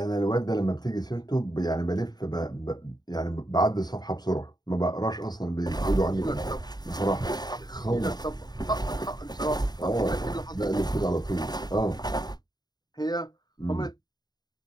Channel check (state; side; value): late; right; 0.20 ms